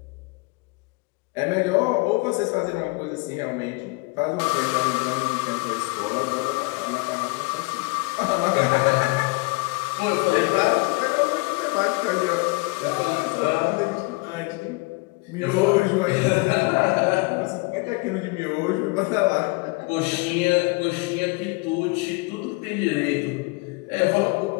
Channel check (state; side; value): quieter; right; 27.0 dB